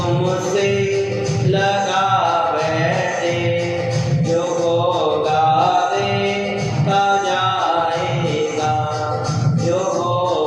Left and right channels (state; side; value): identical; both; correlation 1.00